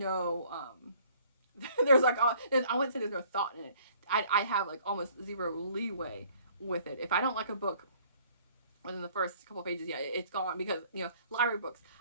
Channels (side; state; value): both; inverted; correlation -0.57